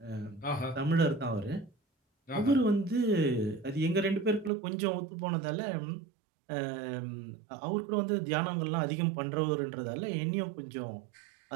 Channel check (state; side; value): drops out; left; at 4.5 s